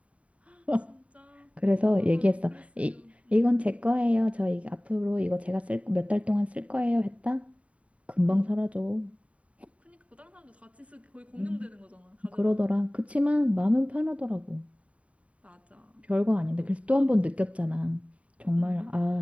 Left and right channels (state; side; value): late; left; 0.066 ms